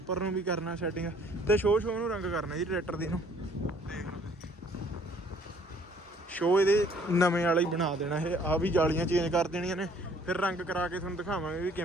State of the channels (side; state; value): both; normal; correlation 0.58